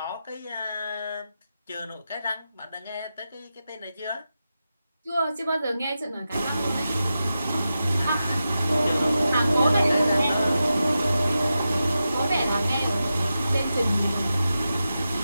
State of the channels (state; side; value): inverted; both; correlation -0.90